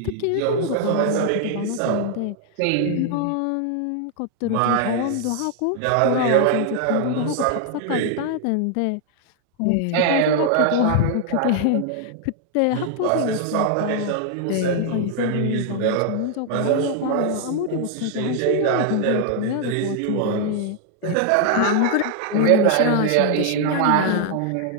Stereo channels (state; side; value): different; both; correlation 0.00